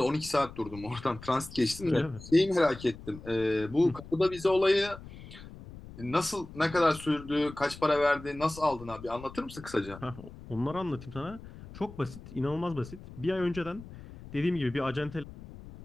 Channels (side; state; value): left; noise; rumble, 16 dB below the sound